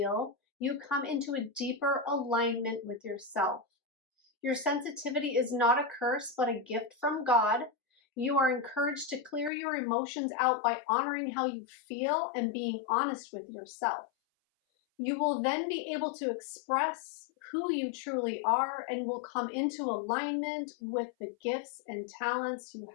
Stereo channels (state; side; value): drops out; right; at 9.5 s